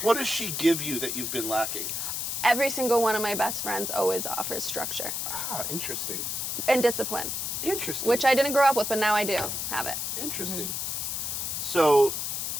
What does she give you that you've been lacking? Every single one of my best friends always offers structure Ah, interesting. and discipline, Interesting. which I didn't grow up with, but now I do have it. Interesting. So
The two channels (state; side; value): noise; left; hiss, 2 dB below the sound